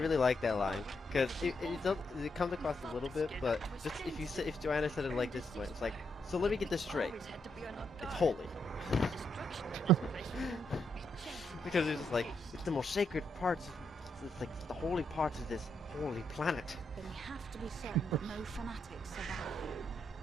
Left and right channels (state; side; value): normal; both; correlation 0.78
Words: like that line because it comes across a little bit, but just if Joanna said it like this way, it's like, so let me get this straight. It's holy. Because it's just like it's the most sacred parts. It's like the holy parts of this holy planet. Then we have to be certain that no fanatics survive.